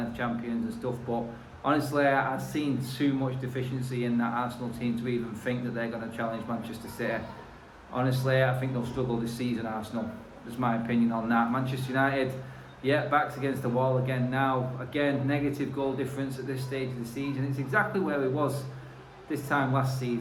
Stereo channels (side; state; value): both; identical; correlation 1.00